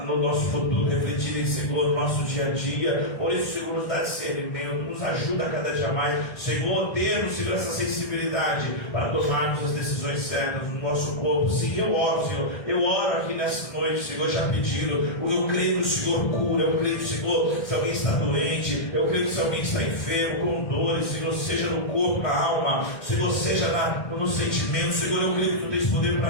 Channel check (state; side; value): late; right; 1.5 ms